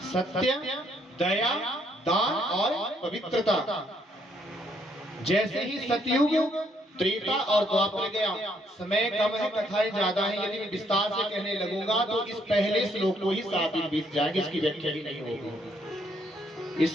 सत्य, दया, दान और पवित्रता। जैसे ही सतयुग, त्रेता और द्वापर गया, समय कम है, कथाएं ज्यादा है, यदि मैं विस्तार से कहने लगूंगा तो इस पहले श्लोक को ही 7 दिन बीत जाएंगे, इसकी व्याख्या ही नहीं होगी।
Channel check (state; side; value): normal; both; correlation 0.70